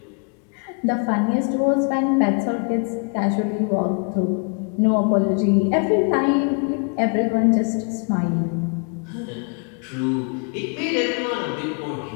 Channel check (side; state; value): right; quieter; 38.0 dB